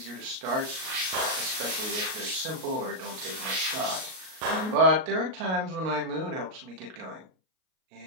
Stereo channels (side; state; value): left; late; 38 ms